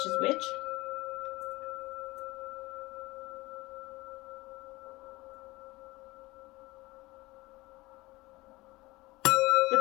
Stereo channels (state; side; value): quieter; right; 20.8 dB